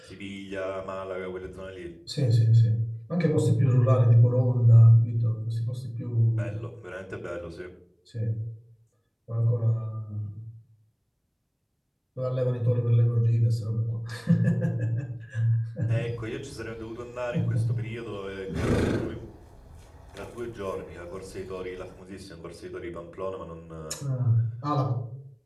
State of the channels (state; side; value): identical; both; correlation 1.00